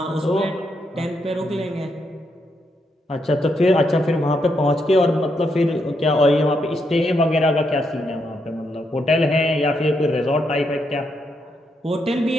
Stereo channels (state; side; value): normal; both; correlation 0.80